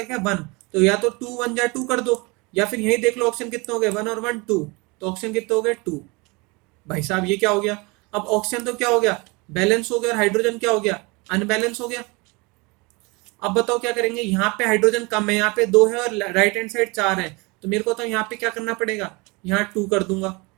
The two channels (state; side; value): quieter; left; 26.6 dB